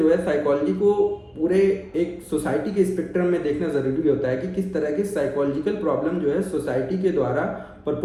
है साइकोलॉजी को पूरे एक सोसाइटी के स्पेक्ट्रम में देखना ज़रूरी होता है कि किस तरह की साइकोलॉजिकल प्रॉब्लम जो है सोसाइटी के द्वारा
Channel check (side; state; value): both; identical; correlation 1.00